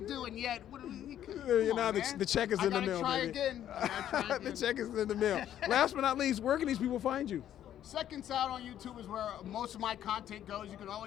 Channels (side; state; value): right; quieter; 11.0 dB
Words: do, and yet, The check is in the mail, try baby. Again. Try The again. check is in the mail. Last but not least, where can these people find you? Second Side on YouTube is where most of my content goes. You can